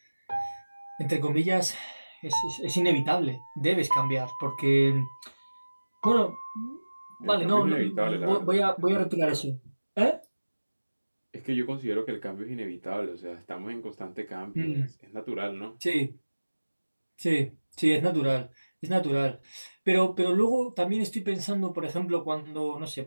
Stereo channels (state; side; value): inverted; both; correlation -1.00